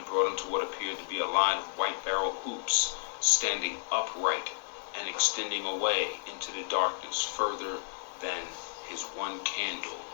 brought him to what appeared to be a line of white barrel hoops standing upright and extending away into the darkness further than his one candle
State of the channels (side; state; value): right; silent; digital silence